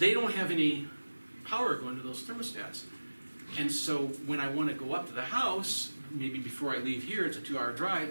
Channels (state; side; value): inverted; both; correlation -1.00